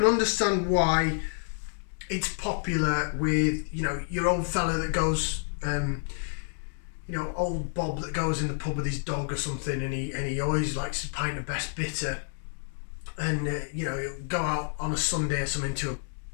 understand why it's popular with, you know, your old fella that goes, you know, old Bob that goes in the pub with his dog or something, and he always likes a pint of best bitter, and you know, he'll go out on a Sunday or something to a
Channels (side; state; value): right; silent; digital silence